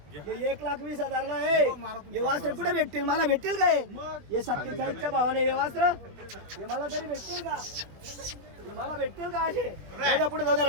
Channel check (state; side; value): late; left; 21 ms